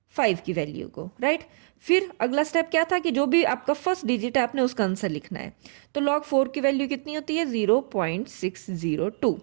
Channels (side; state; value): left; silent; digital silence